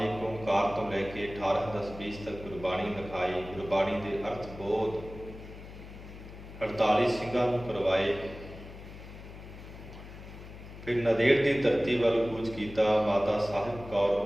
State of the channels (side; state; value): left; noise; hum, 14 dB below the sound